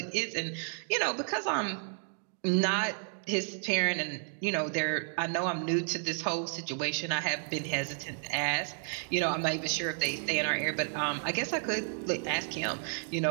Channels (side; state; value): left; silent; 56 dB below the other